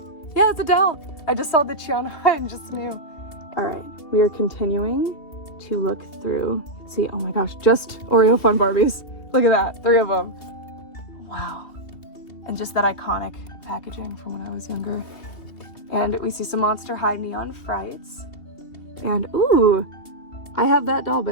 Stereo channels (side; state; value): right; late; 2.7 ms